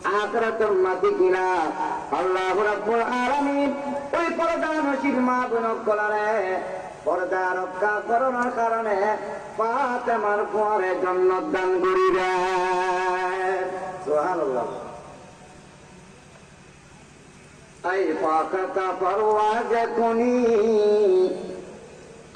আখিরাতের মাটি কিনা আল্লাহ রাব্বুল আলামিন ওই পর্দা নসিব মা বোন কলারে পর্দা রক্ষা করার কারণে ফাতেমার পরে জান্নাত দান করিবেন সুবহানাল্লাহ আই ফাকাতা পরওয়াজ কুনি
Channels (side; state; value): both; identical; correlation 1.00